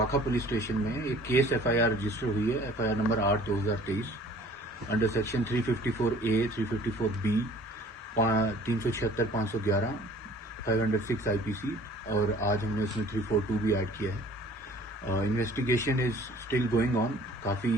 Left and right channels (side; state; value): both; normal; correlation 0.51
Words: پولیس اسٹیشن میں ایک کیس ایف آئی آر رجسٹر ہوئی ہے, ایف آئی آر نمبر 8/2023 under section 354A 354B 376 511 506 IPC, اور آج ہم نے اس میں 342 بھی ایڈ کیا ہے. Investigation is still going on, coffee